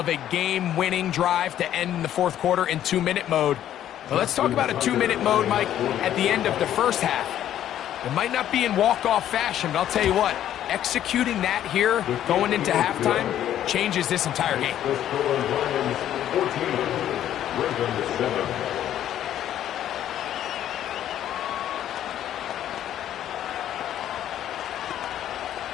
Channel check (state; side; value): quieter; right; 11.3 dB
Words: a game-winning drive to end the 4th quarter in 2-minute mode. Well, let's talk about a 2-minute mode, Mike, at the end of the 1st half. It might not be in walk-off fashion, but I'll tell you what, executing that here, going into halftime, changes this entire game. 14, Ravens 7.